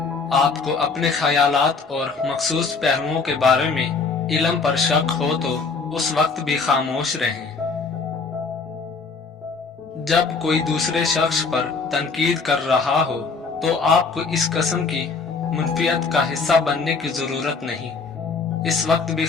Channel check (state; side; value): quieter; right; 4.6 dB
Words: आपको अपने ख्यालात और मखसूस पहलुओं के बारे में इल्म पर शक हो, तो उस वक्त भी खामोश रहें। जब कोई दूसरे शख्स पर तनकीद कर रहा हो, तो आपको इस किस्म की मुनफियत का हिस्सा बनने की जरूरत नहीं, इस वक्त भी